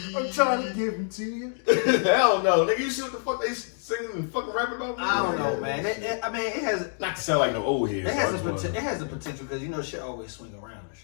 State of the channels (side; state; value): right; silent; digital silence